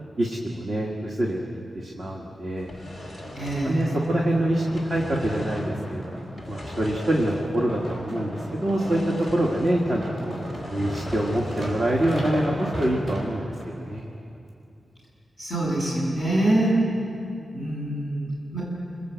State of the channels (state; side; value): normal; both; correlation 0.90